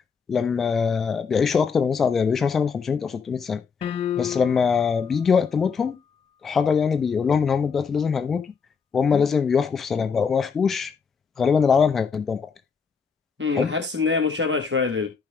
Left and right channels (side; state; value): right; quieter; 5.8 dB